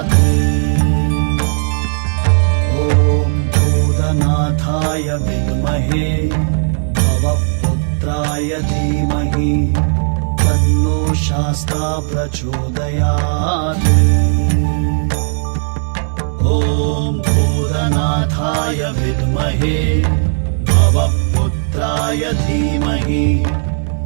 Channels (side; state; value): left; silent; digital silence